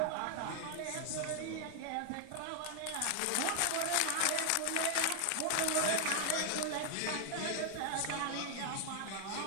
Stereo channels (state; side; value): different; both; correlation 0.00